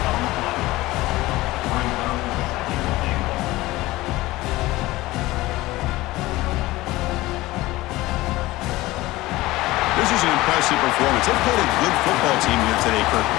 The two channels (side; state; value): right; quieter; 18.7 dB